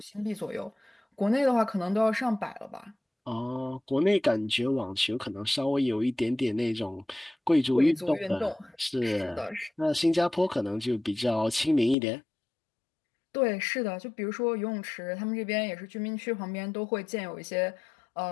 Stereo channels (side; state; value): right; drops out; at 12.0 s